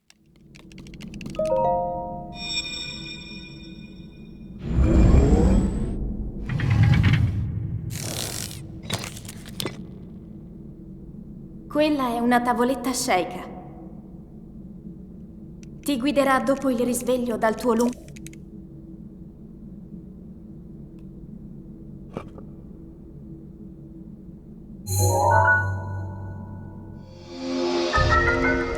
Quella è una tavoletta sceicca. Ti guiderà dopo il risveglio dal tuo lungo...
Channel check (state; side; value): identical; both; correlation 1.00